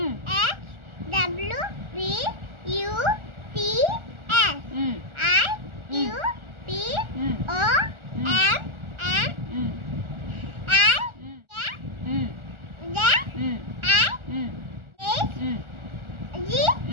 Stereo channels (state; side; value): late; left; 1.4 ms